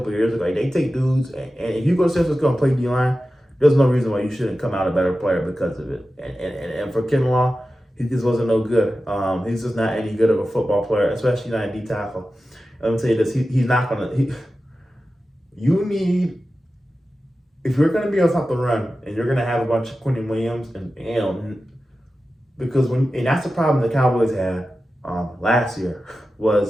of years ago. Like, they take dudes, and if you go to San Francisco and play D line, there's no reason why you shouldn't come out a better player because of it. And for Kinlaw, he just wasn't no good. He's just not any good of a football player, especially not a D tackle. Let me tell you this: he's not gonna. You need, if you're gonna be able to stop the run, and you're gonna have a bunch of Quentin Williams and because and that's the problem the Cowboys had last year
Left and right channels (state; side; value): normal; both; correlation 0.93